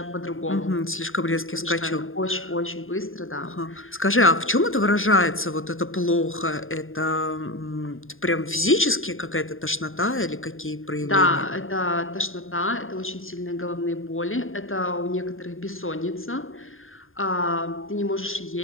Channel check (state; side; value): late; right; 0.59 ms